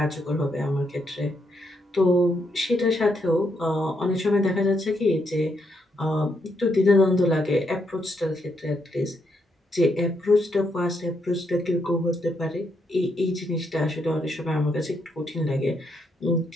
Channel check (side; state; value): both; normal; correlation 0.77